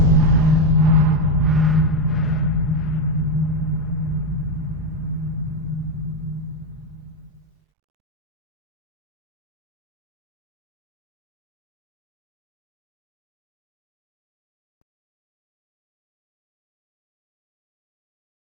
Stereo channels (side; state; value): both; normal; correlation 0.08